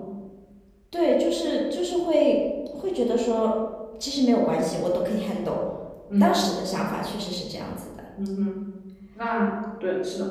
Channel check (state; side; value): identical; both; correlation 1.00